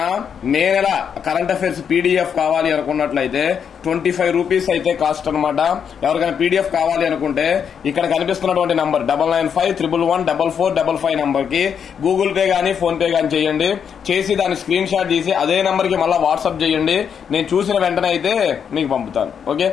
మే నెల కరెంట్ అఫైర్స్ పీడిఎఫ్ కావాలి అనుకున్నట్లయితే 25 రూపీస్ అయితే కాస్ట్ అనమాట. ఎవరికైనా పీడిఎఫ్ కావాలి అనుకుంటే ఇక్కడ కనిపిస్తున్నటువంటి నంబర్ 9951114455 నంబర్ కి గూగుల్ పే గానీ ఫోన్ పే గానీ చేయండి. చేసి దాని స్క్రీన్ షాట్ తీసి అదే నంబర్ కి మళ్ళీ వాట్సాప్ చేయండి. నేను చూసిన వెంటనే అయితే మీకు పంపుతాను. ఓకే,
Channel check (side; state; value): right; quieter; 7.5 dB